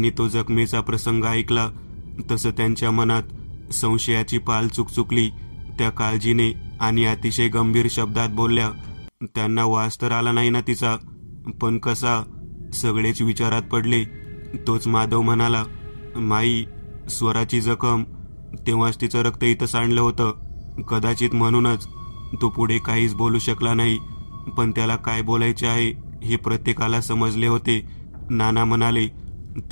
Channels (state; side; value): inverted; both; correlation -1.00